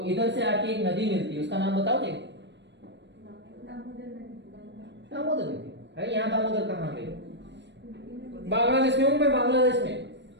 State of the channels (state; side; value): late; left; 0.52 ms